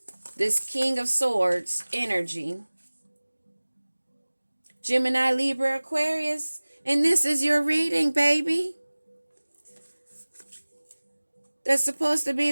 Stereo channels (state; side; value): inverted; both; correlation -1.00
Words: This King of Swords energy. Gemini, Libra, Aquarius. And this is your reading, baby. That's supposed to be